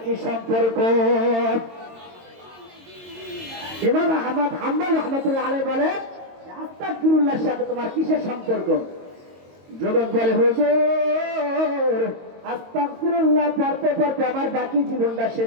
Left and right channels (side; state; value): left; late; 22 ms